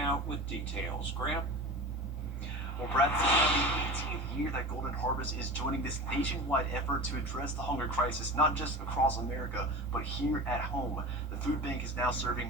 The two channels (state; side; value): normal; both; correlation 0.32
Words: with details. Graham? Well, Brad, this is the 18th year that Golden Harvest is joining this nationwide effort to address the hunger crisis, not just across America, but here at home. The food bank is now serving